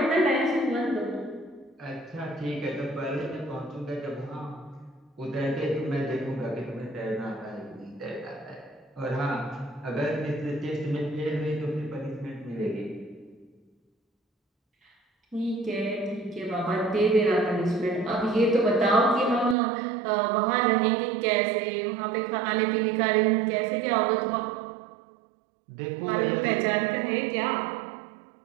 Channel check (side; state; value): left; drops out; at 19.6 s